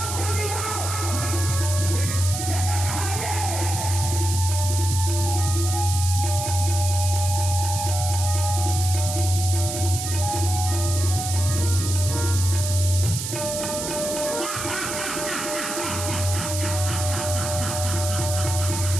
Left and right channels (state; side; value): noise; right; hiss, 5 dB below the sound